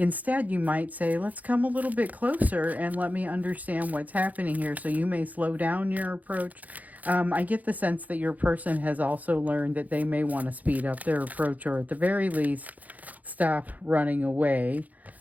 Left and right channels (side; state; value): left; late; 0.078 ms